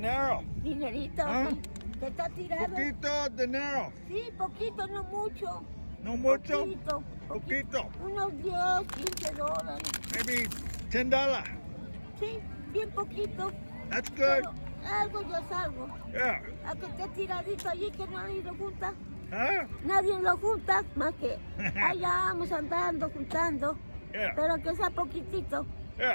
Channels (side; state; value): both; inverted; correlation -1.00